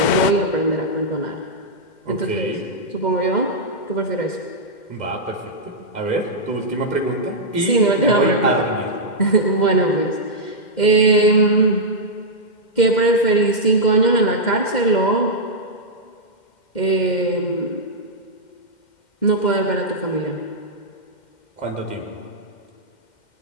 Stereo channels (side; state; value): right; late; 2.1 ms